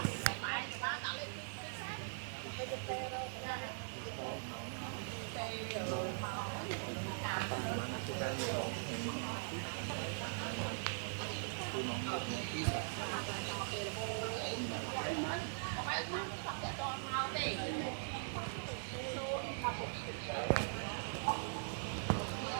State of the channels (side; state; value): left; silent; 50 dB below the other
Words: phải đã lấy cái sai đó làm mấy cái tê rồi mình cha nhom tê ở màu của muối trà đó tôm cao vậy lấy túi sẵn ở mình cá phải to tê là hô có mấy chắc sẽ cho ăn màu tê giờ lấy trong cái xôn đập có số lập gì đấy nhom